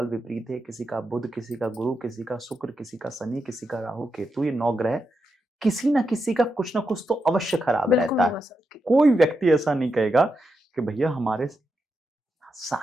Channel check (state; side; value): normal; both; correlation 0.85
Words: विपरीत है, किसी का बुध, किसी का गुरु, किसी का शुक्र, किसी का शनि, किसी का राहु केतु, ये 9 ग्रह किसी ना किसी का कुछ ना कुछ तो अवश्य खराब रहता है। कोई व्यक्ति ऐसा नहीं कहेगा कि भैया हमारे